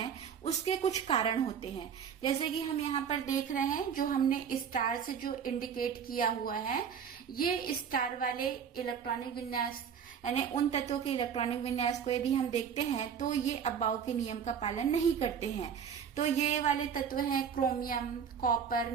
उसके कुछ कारण होते हैं। जैसे कि हम यहाँ पर देख रहे हैं, जो हमने स्टार से जो इंडिकेट किया हुआ है, ये स्टार वाले इलेक्ट्रॉनिक विन्यास यानी उन तत्वों के इलेक्ट्रॉनिक विन्यास को यदि हम देखते हैं तो ये अबाव के नियम का पालन नहीं करते हैं। तो ये वाले तत्व हैं chromium, copper,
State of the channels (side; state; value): left; quieter; 7.4 dB